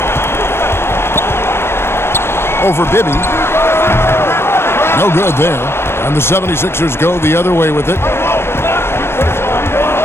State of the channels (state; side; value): late; right; 0.12 ms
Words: Over Bibby. No good there. And the 76ers go the other way with it.